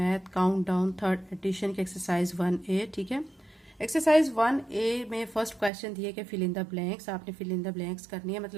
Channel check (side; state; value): left; drops out; at 5.7 s